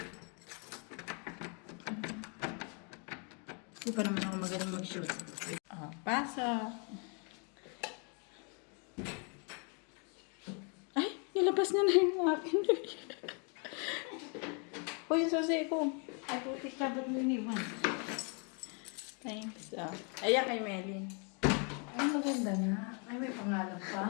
Hindi pa naman ako magaling mag-shoot. O, pasok. Ay, nilabas niya na yung akin. Uy, yung susi ko. Ay, putik ka, ba't mo iniwan? Thanks. Ayan kay Melin. Ay, maganda na. Ay, may pangalan pa.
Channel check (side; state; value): right; quieter; 37.0 dB